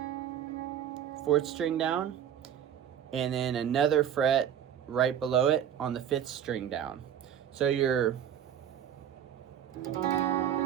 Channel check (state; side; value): quieter; left; 9.6 dB